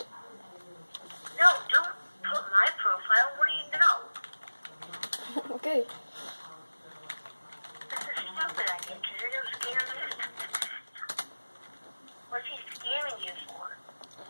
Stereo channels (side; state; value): both; inverted; correlation -1.00